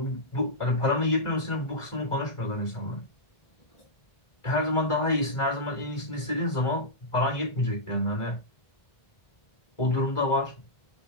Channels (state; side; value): late; right; 1.4 ms